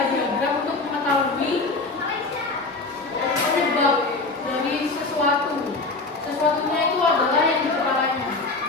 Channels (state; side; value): quieter; right; 3.5 dB